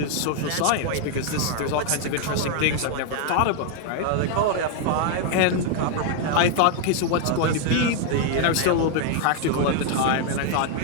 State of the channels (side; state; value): both; different; correlation 0.00